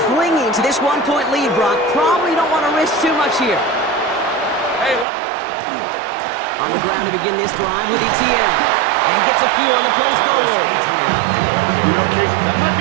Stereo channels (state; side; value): drops out; left; at 5.1 s